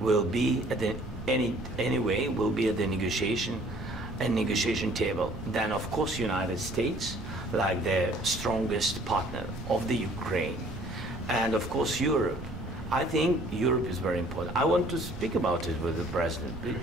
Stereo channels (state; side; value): noise; right; rumble, 13 dB below the sound